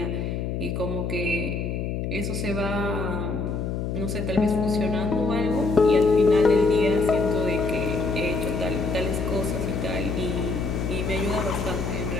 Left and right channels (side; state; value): left; noise; hum, 2 dB below the sound